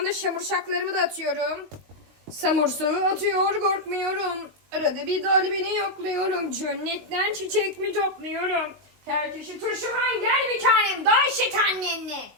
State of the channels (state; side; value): late; left; 19 ms